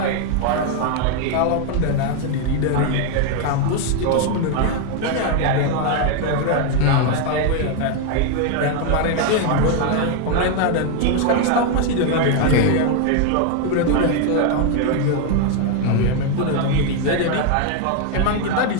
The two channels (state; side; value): different; both; correlation 0.01